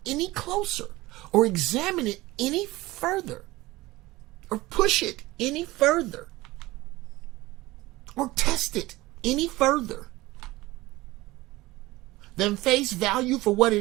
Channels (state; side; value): quieter; left; 19.3 dB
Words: any closer or examine it any further or push it any further or test it any further than face value for what